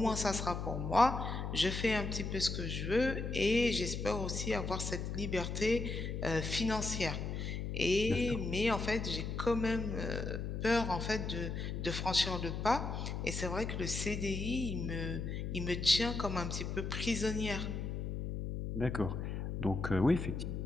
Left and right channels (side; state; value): left; noise; hum, 3 dB below the sound